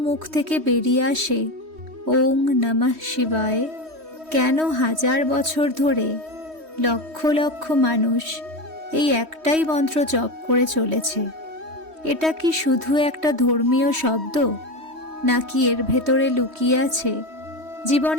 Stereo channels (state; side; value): late; left; 3.2 ms